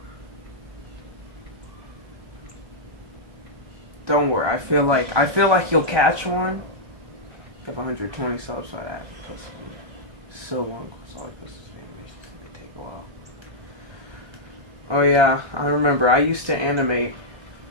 Don't worry. I feel like you'll catch one. I have 120 subs, so I have so long. So I guess this animation's gonna take a while. Oh yeah, I remember. I used to animate.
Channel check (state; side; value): late; left; 1.3 ms